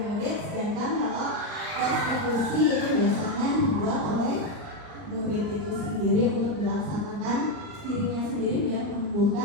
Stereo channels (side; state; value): left; late; 39 ms